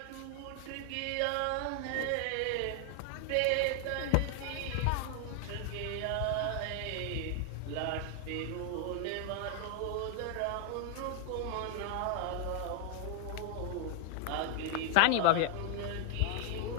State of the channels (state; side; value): different; both; correlation 0.00